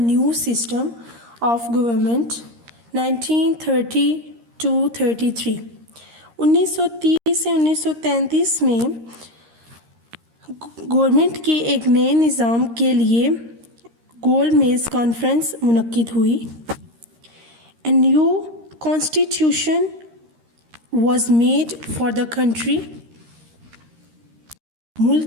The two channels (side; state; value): left; late; 13 ms